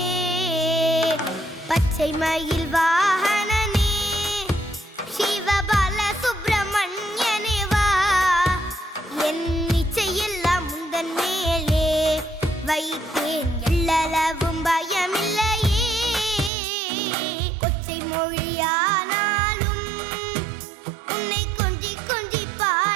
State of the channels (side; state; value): left; drops out; at 16.5 s